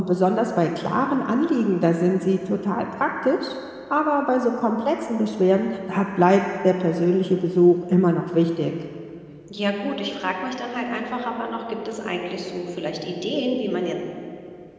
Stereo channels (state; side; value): identical; both; correlation 1.00